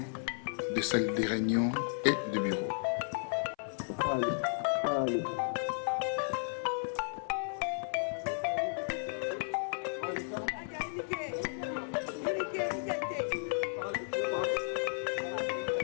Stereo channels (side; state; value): right; silent; 55 dB below the other